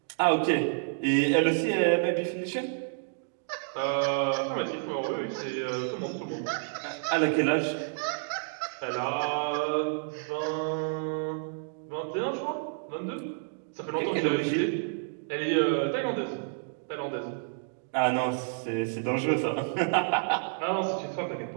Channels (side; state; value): left; silent; digital silence